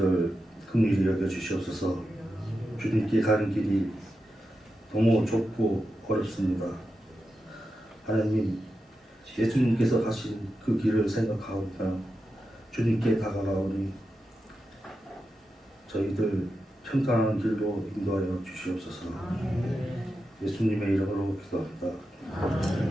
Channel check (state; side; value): normal; both; correlation 0.89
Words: 긍휼히 여겨 주시옵소서. 주님께 가는 길이 너무 좁고 어렵습니다. 하나님, 예수님께서 가신 그 길을 생각하오며 주님께 다가가오니 저희들 평탄한 길로 인도하여 주시옵소서. 예수님의 이름으로 기도합니다.